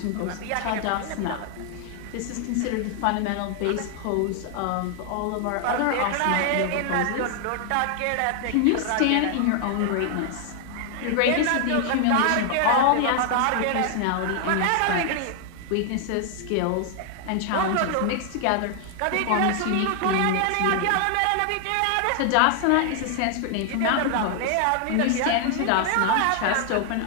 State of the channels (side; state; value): both; different; correlation 0.00